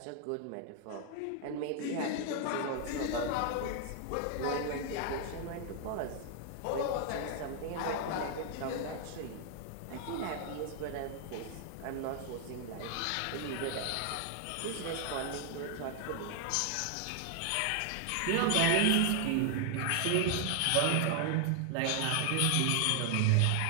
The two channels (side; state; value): both; different; correlation 0.00